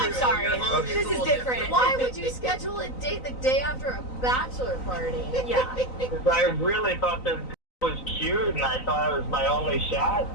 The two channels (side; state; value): right; late; 3.9 ms